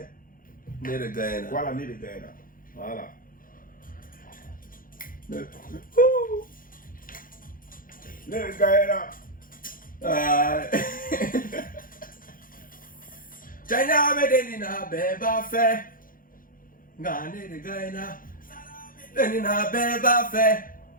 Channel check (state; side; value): late; right; 0.40 ms